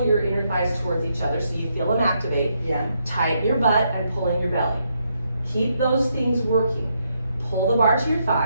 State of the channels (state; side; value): inverted; both; correlation -0.78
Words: your inner thighs towards each other so you feel them activate. Yeah. Tighten your butt and pull in your belly. Keep those things working. Pull the bar to your